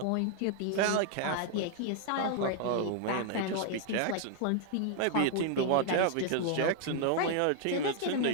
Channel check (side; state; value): both; different; correlation 0.00